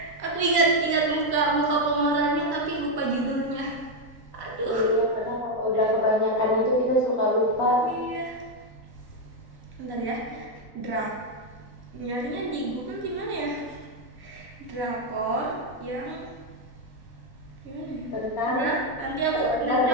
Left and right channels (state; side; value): late; right; 3.9 ms